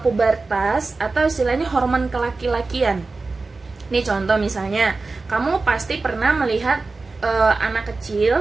pubertas atau istilahnya hormon kelaki-lakian. Ini contoh misalnya, kamu pasti pernah melihat anak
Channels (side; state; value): left; quieter; 3.8 dB